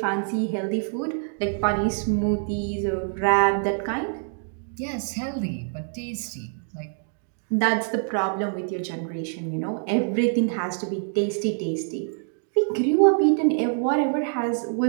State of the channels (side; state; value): left; silent; 58 dB below the other